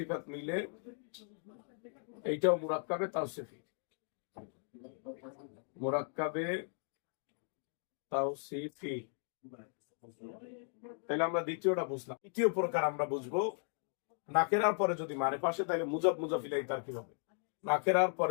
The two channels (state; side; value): silent; right; 53 dB below the other